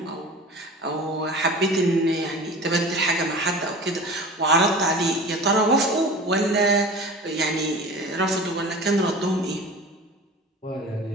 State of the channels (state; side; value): normal; both; correlation 0.37